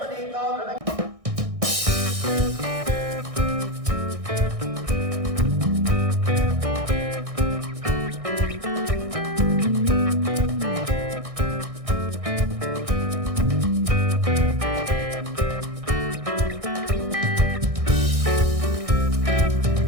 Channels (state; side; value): late; left; 1.6 ms